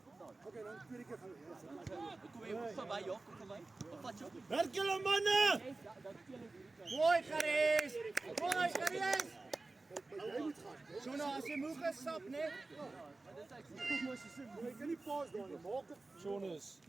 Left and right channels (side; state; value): left; quieter; 3.4 dB